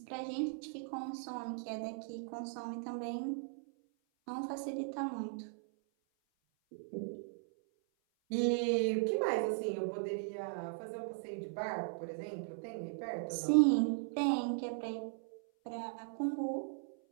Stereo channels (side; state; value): left; silent; 52 dB below the other